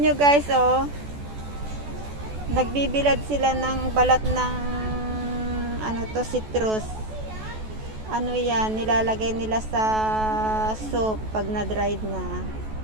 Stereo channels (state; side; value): late; left; 14 ms